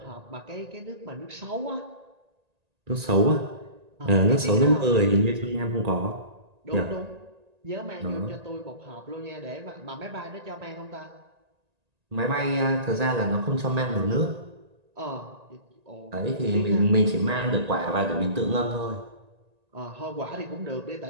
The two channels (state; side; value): late; left; 1.9 ms